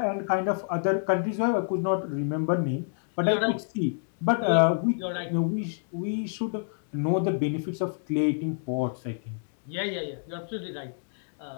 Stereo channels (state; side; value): silent; right; 60 dB below the other